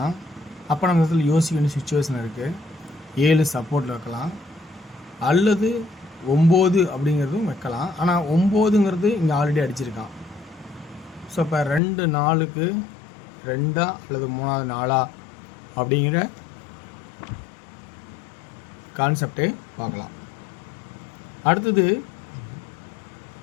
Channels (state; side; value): drops out; right; at 11.8 s